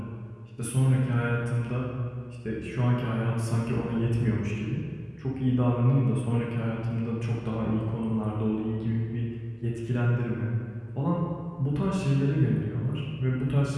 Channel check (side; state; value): both; identical; correlation 1.00